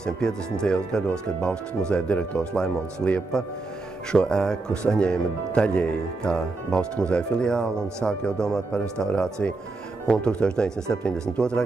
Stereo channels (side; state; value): left; quieter; 3.5 dB